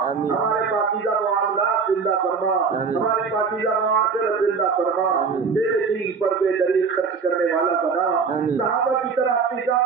ہمارے پاکیزہ معاملات زندہ فرما، ہماری پاکیزہ معاشرت زندہ فرما، تیرے دین پر بے دریغ خرچ کرنے والا بنا، صحابہ کی طرح اپنی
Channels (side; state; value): left; quieter; 5.4 dB